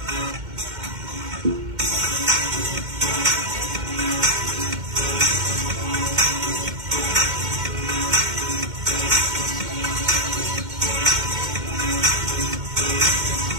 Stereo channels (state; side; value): late; left; 2.1 ms